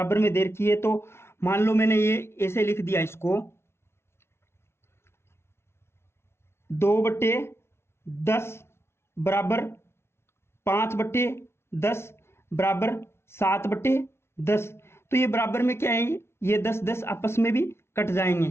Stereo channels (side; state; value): right; late; 0.12 ms